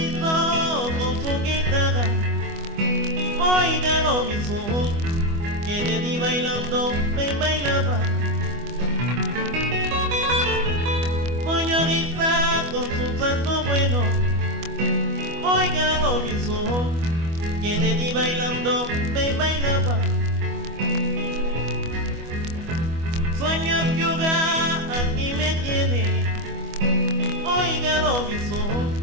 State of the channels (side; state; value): left; late; 25 ms